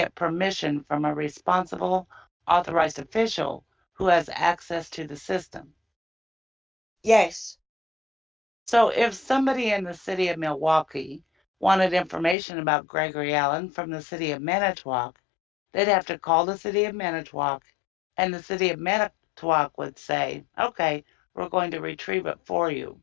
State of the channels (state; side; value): drops out; right; at 12.4 s